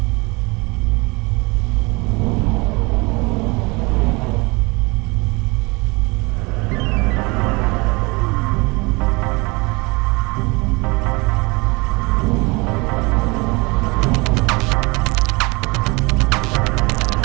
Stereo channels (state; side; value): quieter; left; 26.1 dB